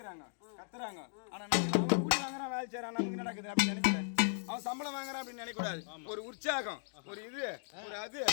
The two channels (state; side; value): silent; right; digital silence